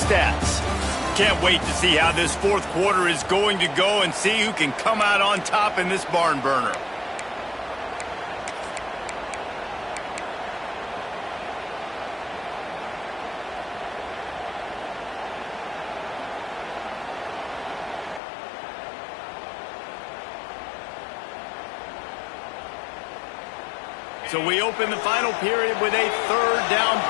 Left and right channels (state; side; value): drops out; right; at 18.2 s